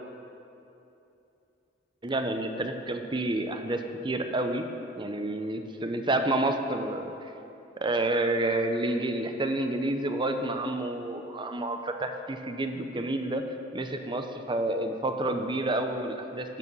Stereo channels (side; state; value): both; normal; correlation 0.45